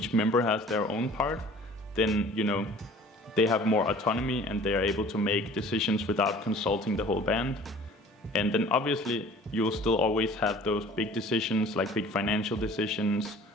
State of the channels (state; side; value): normal; both; correlation 0.48